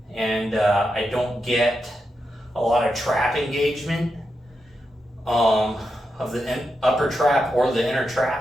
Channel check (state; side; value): normal; both; correlation 0.86